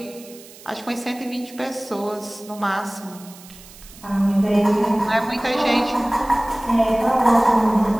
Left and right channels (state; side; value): noise; right; hiss, 20 dB below the sound